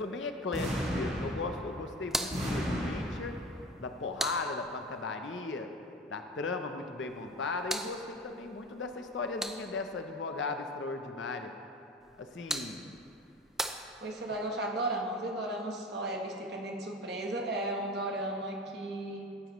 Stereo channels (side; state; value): both; normal; correlation 0.34